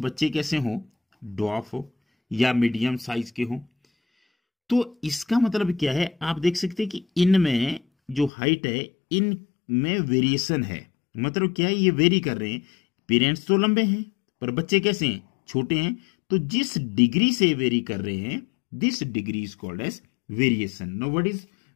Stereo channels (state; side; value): drops out; right; at 8.3 s